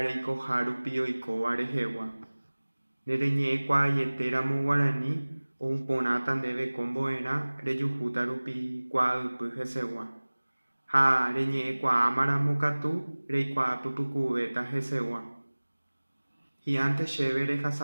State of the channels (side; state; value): both; inverted; correlation -1.00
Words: Harupi Oiko Arejewa. Nereñe Quayetéramo Guarani, o un ponatan debe comboera, Reyujutarupi Quadupy Hesegua. Ha reñe Quamara Mokatu, Reikwa Pupucubeta Hesegua. Y antes chévere